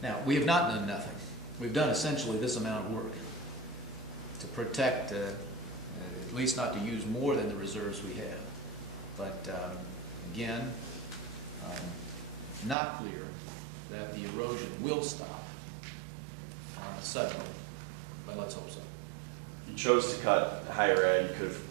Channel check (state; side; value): drops out; left; at 12.8 s